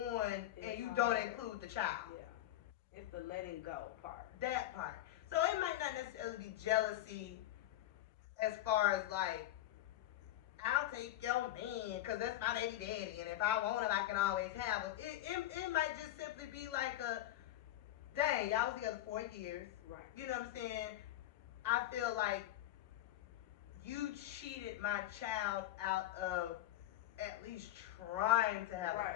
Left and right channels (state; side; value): quieter; right; 14.0 dB